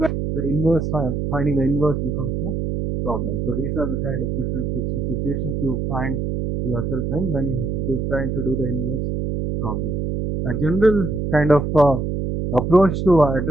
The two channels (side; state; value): right; noise; hum, 1 dB below the sound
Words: the inverse, finding the inverse becomes a problem. So these are the kind of different situations you find yourself in when you're trying to do the inverse problem. A general kind of approach to